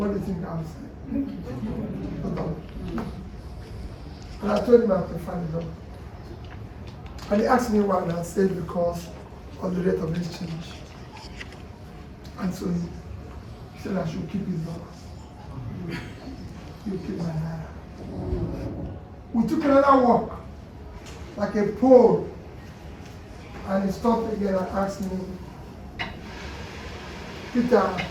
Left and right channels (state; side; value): identical; both; correlation 1.00